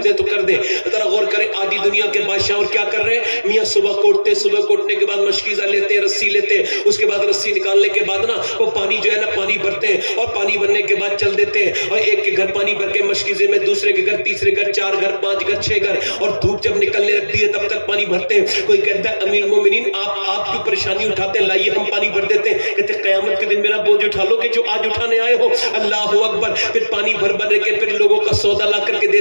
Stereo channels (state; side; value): inverted; both; correlation -1.00